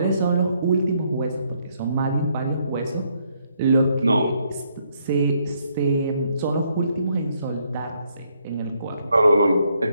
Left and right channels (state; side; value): inverted; both; correlation -0.73